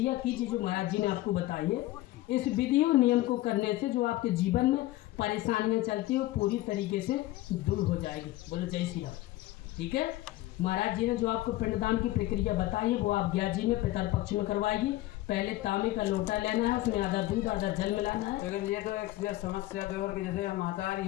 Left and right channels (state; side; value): quieter; right; 16.9 dB